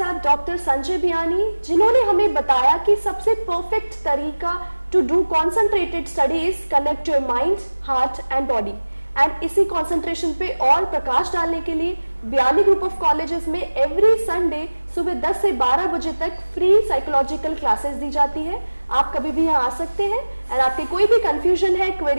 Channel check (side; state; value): both; inverted; correlation -1.00